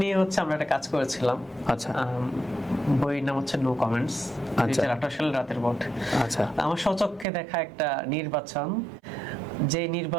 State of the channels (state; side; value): drops out; left; at 7.2 s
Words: নিয়ে হচ্ছে আমরা একটা কাজ করেছিলাম। আচ্ছা। বইয়ের নাম হচ্ছে নো কমেন্টস, 2018 সালের রাতের ভোট। আচ্ছা। আমার স্বচক্ষে দেখা একটা নির্বাচন, যে